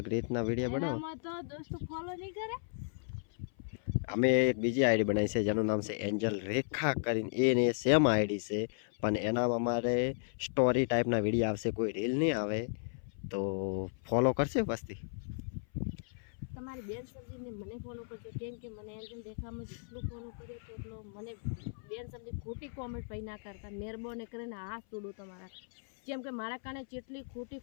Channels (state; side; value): silent; right; 54 dB below the other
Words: રીતના વિડીયો બનાવો. એનામાં તો દોસ્તો ફોલો નહીં કરે. અમે એક બીજી આઈડી બનાવી છે જેનું નામ છે એન્જલ રેખા કરીને. એને સેમ આઈડી છે પણ એનામાં અમારે સ્ટોરી ટાઈપના વિડીયો આવશે, કોઈ રીલ નહીં આવે. તો ફોલો કરશે વસ્તી. તમારી બેન સબ્જીને મને ફોલો કરજો કેમ કે મને એન્જલ રેખામાં જેટલું ફોલો કર્યો તો એટલો મને બેન સબ્જી ખોટી કોમેન્ટ પૈ ના કરતા મહેરબાની કરીને હાથ તોડું તમારા. જેમ કે મારા કારણે જેટલી